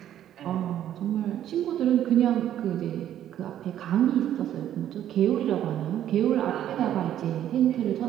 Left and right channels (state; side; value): quieter; left; 11.2 dB